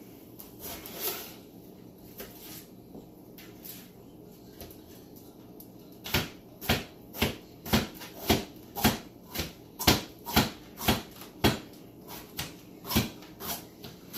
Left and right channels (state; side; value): identical; both; correlation 1.00